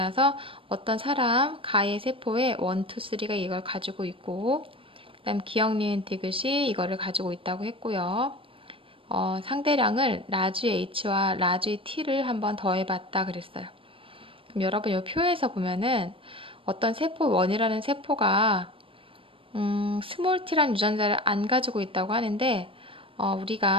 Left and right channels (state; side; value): late; left; 0.26 ms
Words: 어떤 사람 가의 세포에 1, 2, 3가 이걸 가지고 있고 그 다음 기억, 니은, 디귿이 이거를 가지고 있다고 했고요. 상대량을 라지 H와 라지 T를 한번 더해봤다 그랬어요. 그럼 여러분 이 표에서 보면은 어떤 세포 1이라는 세포가 스몰 t라는 유전자를 안 가지고 있다고 하는데